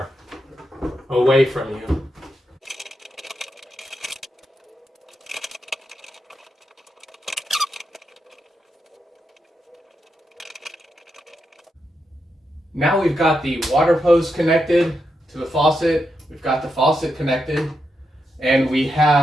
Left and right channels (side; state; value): both; normal; correlation 0.85